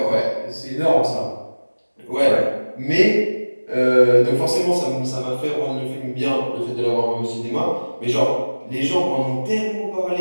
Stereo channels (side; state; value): both; inverted; correlation -1.00